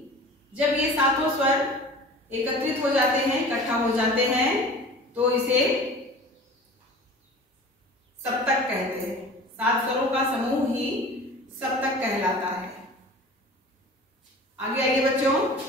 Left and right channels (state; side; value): normal; both; correlation 0.40